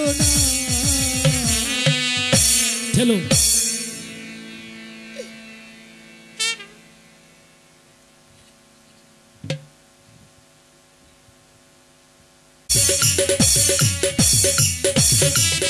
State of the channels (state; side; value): identical; both; correlation 1.00